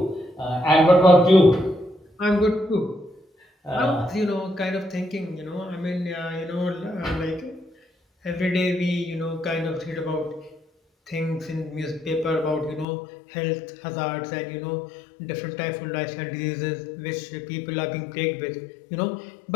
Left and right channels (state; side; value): drops out; right; at 12.9 s